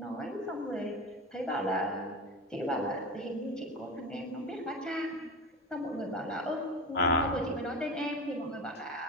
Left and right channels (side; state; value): both; normal; correlation 0.27